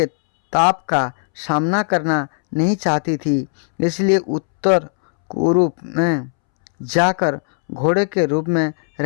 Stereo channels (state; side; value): silent; right; 67 dB below the other